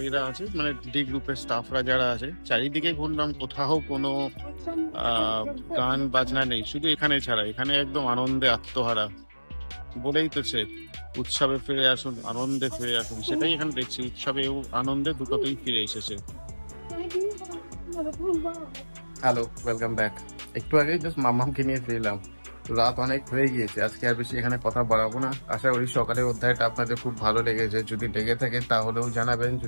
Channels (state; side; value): inverted; both; correlation -1.00